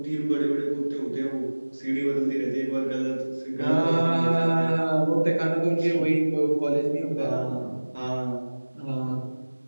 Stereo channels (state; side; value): inverted; both; correlation -1.00